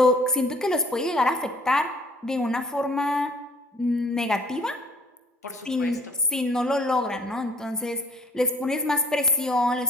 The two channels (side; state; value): both; normal; correlation 0.56